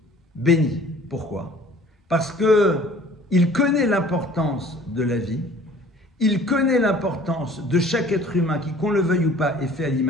bénit. Pourquoi? Parce qu'il connaît l'importance de la vie, il connaît l'importance de chaque être humain qui, qu'on le veuille ou pas, est fait à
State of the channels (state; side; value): normal; both; correlation 0.51